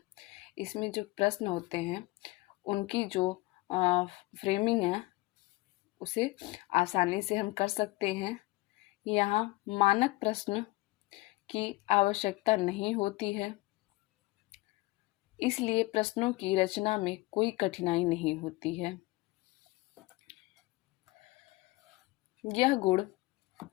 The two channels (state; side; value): quieter; right; 21.5 dB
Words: इसमें जो प्रश्न होते हैं उनकी जो फ्रेमिंग है उसे आसानी से हम कर सकते हैं। यहाँ मानक प्रश्न की आवश्यकता नहीं होती है, इसलिए प्रश्नों की रचना में कोई कठिनाई नहीं होती है। यह गुण